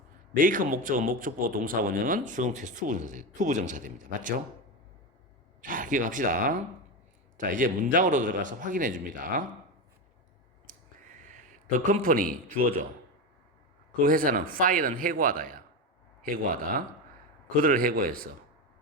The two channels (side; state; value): both; normal; correlation 0.17